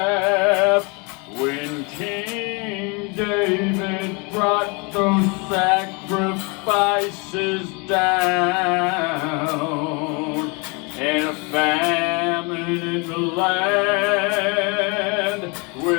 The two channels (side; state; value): right; quieter; 30.8 dB